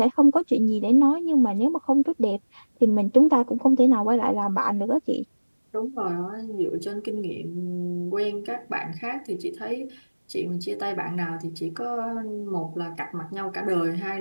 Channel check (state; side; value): inverted; both; correlation -1.00